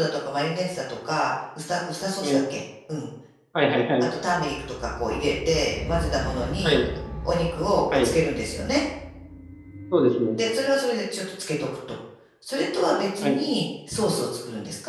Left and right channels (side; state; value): both; identical; correlation 1.00